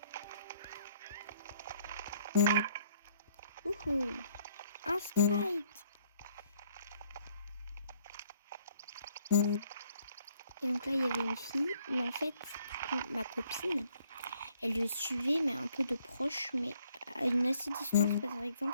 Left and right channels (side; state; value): both; inverted; correlation -0.64